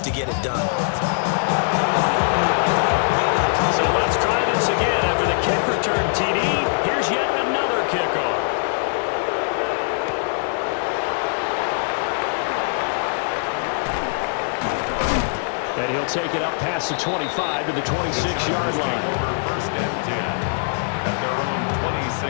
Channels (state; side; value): silent; right; digital silence